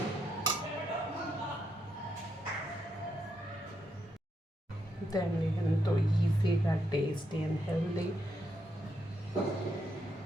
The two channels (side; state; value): both; normal; correlation 0.80